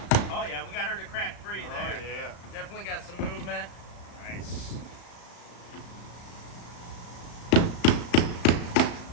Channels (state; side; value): late; right; 35 ms